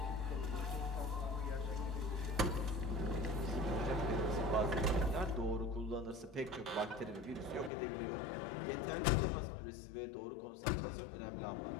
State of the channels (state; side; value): drops out; right; at 7.7 s